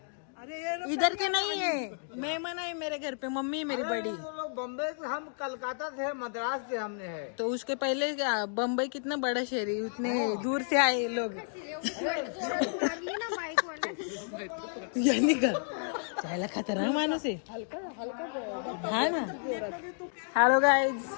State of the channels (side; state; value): right; silent; digital silence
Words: इधर के नहीं है. मेहमान है मेरे घर पे. मम्मी मेरी बड़ी. बम्बई से हम कलकत्ता से मद्रास से हमने है. तो उसके पहले बम्बई कितना बड़ा शहर है उतने दूर से आए लोग. यानी का जायला खतरनाक माणूस आहे. हा ना. Hello guys.